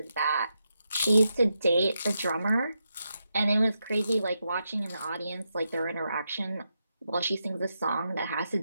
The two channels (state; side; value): inverted; both; correlation -0.85